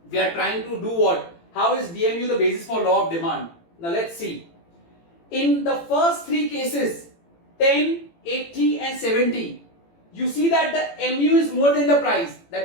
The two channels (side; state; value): right; late; 18 ms